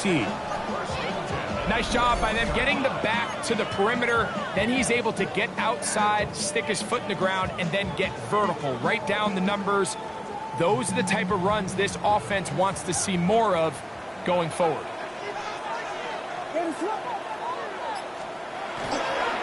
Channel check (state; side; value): identical; both; correlation 1.00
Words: Nice job by them getting the back to the perimeter. Then he's able to get outside, stick his foot in the ground, and then get vertical right down the numbers. Those are the type of runs this offense wants to see more of going forward.